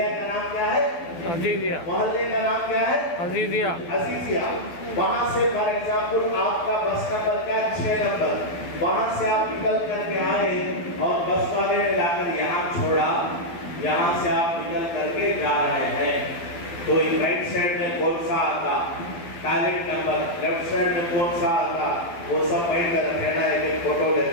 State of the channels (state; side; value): late; right; 12 ms